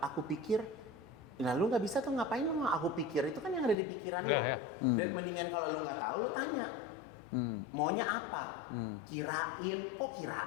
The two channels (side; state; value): right; drops out; at 3.8 s